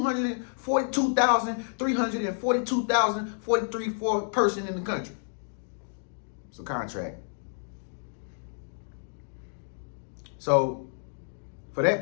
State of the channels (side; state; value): right; silent; digital silence